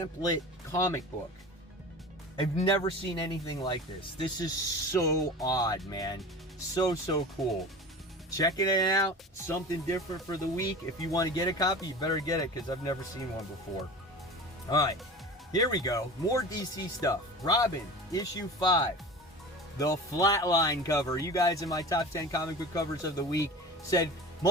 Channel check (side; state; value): both; normal; correlation 0.35